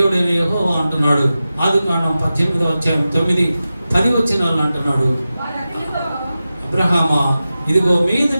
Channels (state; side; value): inverted; both; correlation -0.94